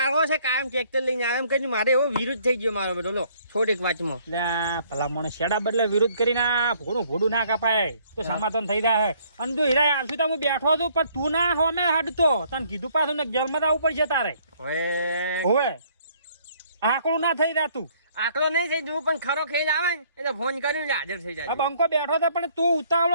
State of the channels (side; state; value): both; inverted; correlation -0.63